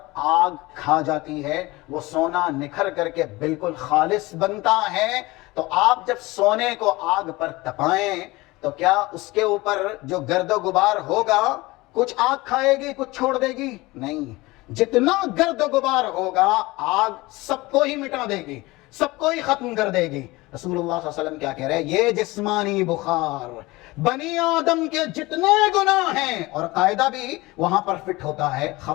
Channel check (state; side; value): quieter; right; 21.2 dB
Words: آگ کھا جاتی ہے، وہ سونا نکھر کر کے بالکل خالص بنتا ہے۔ تو آپ جب سونے کو آگ پر تپائیں تو کیا اس کے اوپر جو گرد و غبار ہوگا کچھ آگ کھائے گی، کچھ چھوڑ دے گی؟ نہیں، جتنا گرد و غبار ہوگا آگ سب کو ہی مٹا دے گی، سب کو ہی ختم کر دے گی۔ رسول اللہ صلی اللہ علیہ وسلم کیا کہہ رہے ہیں؟ یہ جسمانی بخار بنی آدم کے جتنے گناہ ہیں، اور قاعدہ بھی وہاں پر فٹ ہوتا ہے،